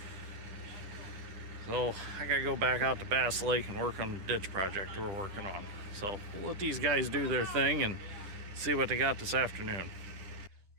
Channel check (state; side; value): late; left; 10 ms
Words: So I gotta go back out to Bass Lake and work on the ditch project we're working on. So we'll let these guys do their thing and see what they got this afternoon.